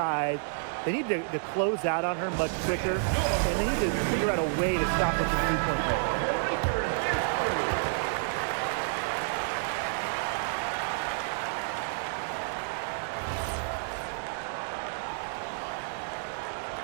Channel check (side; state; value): left; silent; digital silence